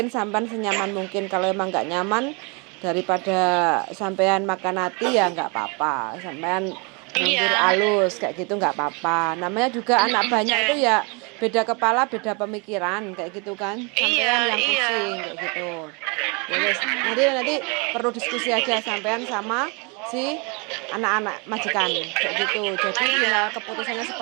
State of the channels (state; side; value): quieter; left; 31.7 dB